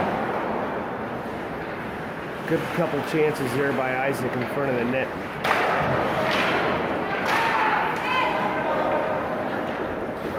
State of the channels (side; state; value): both; identical; correlation 1.00